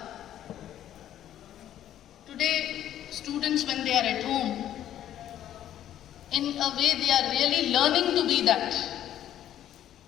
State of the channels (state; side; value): quieter; right; 11.5 dB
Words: Today, students, when they are at home, in a way they are really learning to be that.